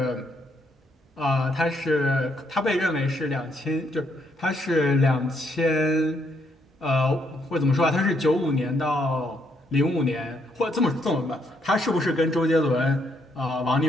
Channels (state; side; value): normal; both; correlation 0.73